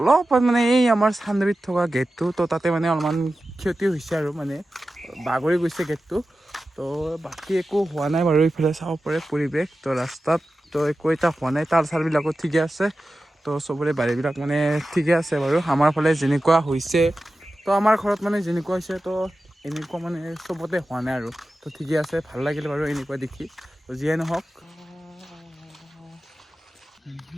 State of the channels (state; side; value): normal; both; correlation 0.94